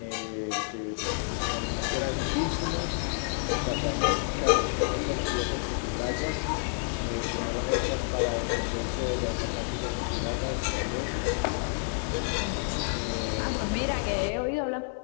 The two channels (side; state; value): right; silent; 58 dB below the other